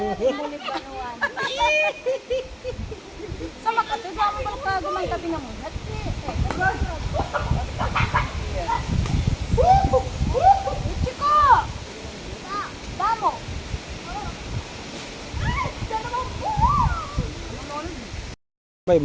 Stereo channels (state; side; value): identical; both; correlation 1.00